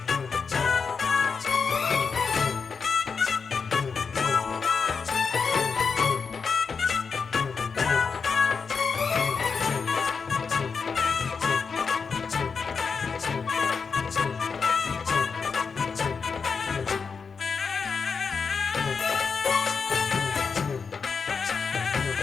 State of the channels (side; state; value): right; quieter; 5.4 dB